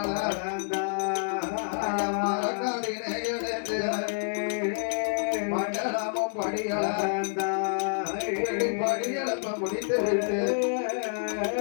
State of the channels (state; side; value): silent; right; digital silence